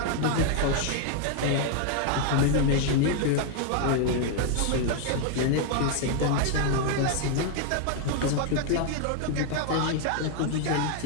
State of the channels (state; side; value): different; both; correlation 0.00